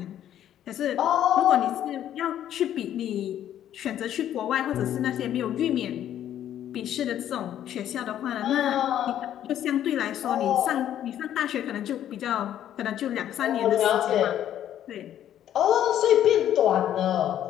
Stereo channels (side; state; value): right; quieter; 11.1 dB